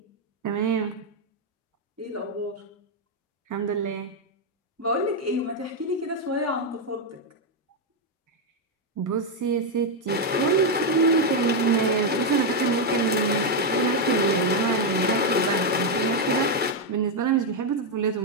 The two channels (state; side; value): normal; both; correlation 0.02